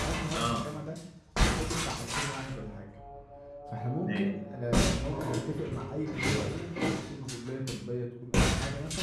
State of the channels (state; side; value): identical; both; correlation 1.00